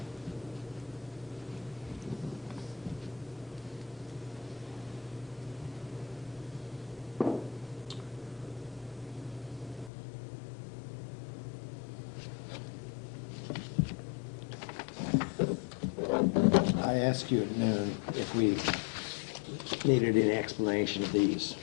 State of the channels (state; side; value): drops out; right; at 9.9 s